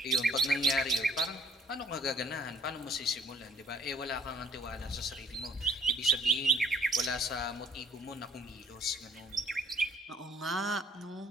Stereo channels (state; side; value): normal; both; correlation 0.58